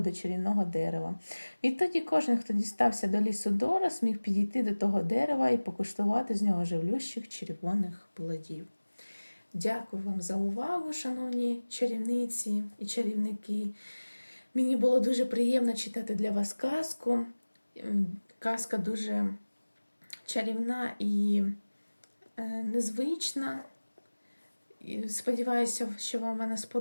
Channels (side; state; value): both; inverted; correlation -1.00